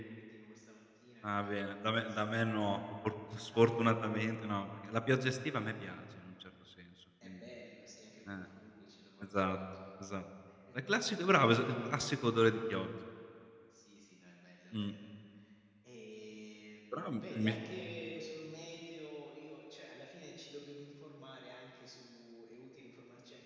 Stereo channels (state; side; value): identical; both; correlation 1.00